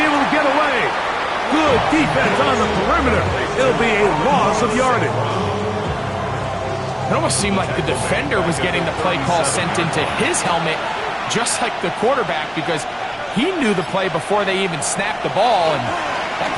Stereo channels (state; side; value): identical; both; correlation 1.00